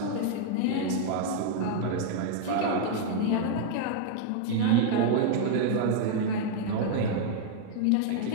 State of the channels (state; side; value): different; both; correlation 0.00